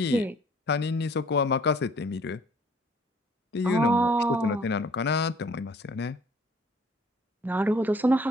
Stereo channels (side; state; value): both; normal; correlation 0.57